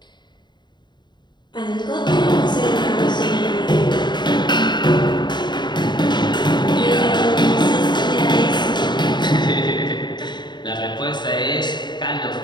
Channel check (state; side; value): late; right; 0.21 ms